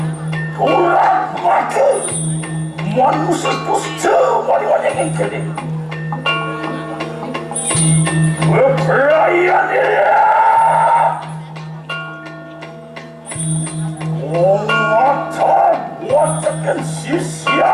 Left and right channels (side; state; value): both; identical; correlation 1.00